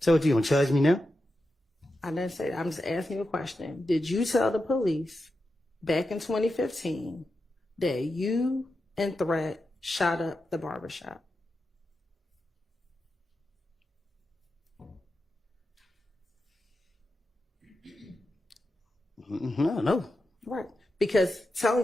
what, you gonna charge me now? I didn't say that. I'm just asking you a question. Did you tell the police back in 2015 that you and Threat shot up the barbershop? No. Right. Because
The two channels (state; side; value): normal; both; correlation 0.89